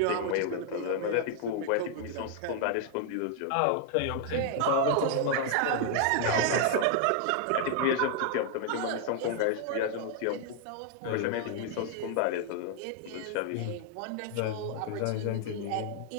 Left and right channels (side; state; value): both; different; correlation 0.00